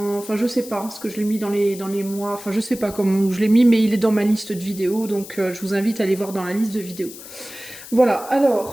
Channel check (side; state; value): left; noise; hiss, 15 dB below the sound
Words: je sais pas, parce que je l'ai mis dans les mois, enfin je sais pas comment je l'ai mis, mais il est dans ma liste de vidéos, donc je vous invite à aller voir dans la liste de vidéos. Voilà,